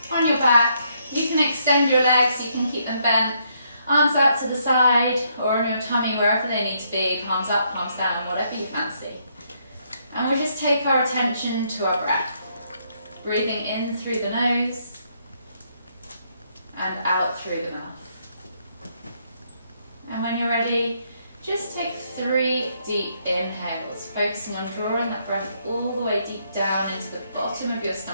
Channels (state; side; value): inverted; both; correlation -0.73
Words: on your back. You can extend your legs, you can keep them bent, arms out to the side or on your tummy, wherever they need to be, palms up, palms down, whatever you fancy. And we'll just take our attention to our breath. Breathing in through the nose and out through the mouth. And when you're ready, just take 3 deep inhales, focusing on drawing that breath all the way deep down into the bottom of your